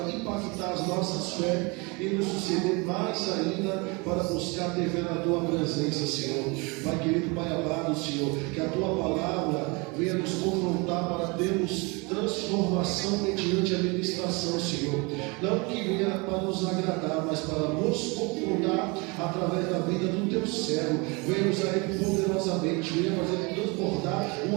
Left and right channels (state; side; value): quieter; left; 28.4 dB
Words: impactar as nossas fé e nos suceder mais ainda para buscar ter fé na tua presença, Senhor. Pai querido, Pai amado, Senhor, que a tua palavra venha nos confrontar para termos transformação mediante a ministração, Senhor. Não que venha para nos agradar, mas para nos confrontar através da vida do teu servo. Venha nos aí poderosamente, venha fazer transbordar